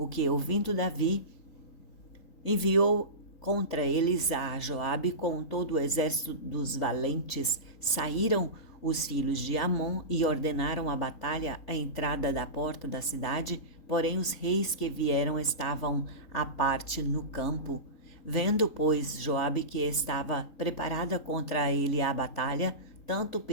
que, ouvindo Davi, enviou contra eles a Joabe com todo o exército dos valentes. Saíram os filhos de Amon e ordenaram a batalha à entrada da porta da cidade, porém os reis que vieram estavam à parte no campo. Vendo, pois, Joabe que estava preparada contra ele a batalha, tanto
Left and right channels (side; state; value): right; late; 3.9 ms